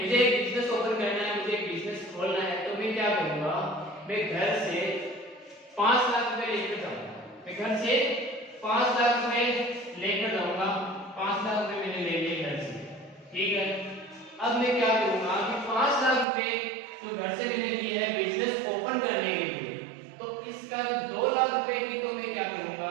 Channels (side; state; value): left; drops out; at 16.2 s